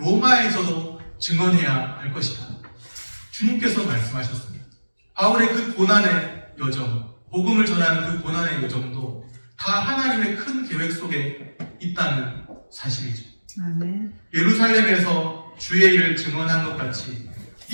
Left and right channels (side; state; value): both; inverted; correlation -1.00